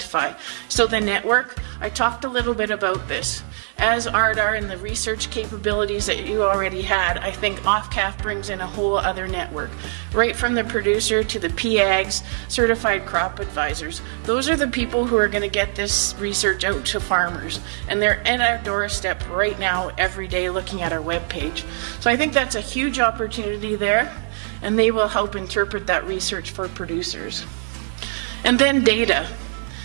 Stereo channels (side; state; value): left; silent; digital silence